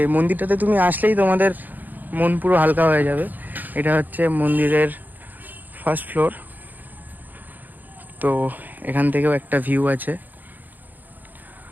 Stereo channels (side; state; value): left; late; 0.085 ms